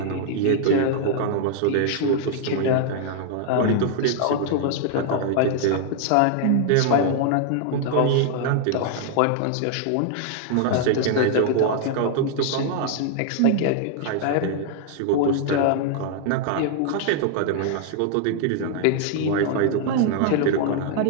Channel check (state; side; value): different; both; correlation 0.00